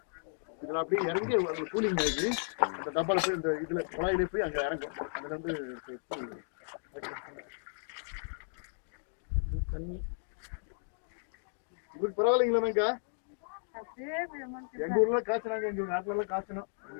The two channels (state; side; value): silent; right; digital silence